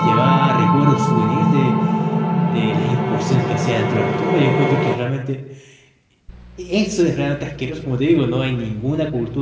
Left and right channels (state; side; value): identical; both; correlation 1.00